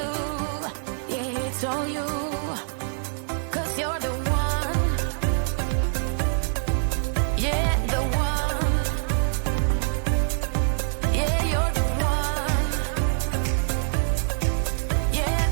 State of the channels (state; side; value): silent; left; 59 dB below the other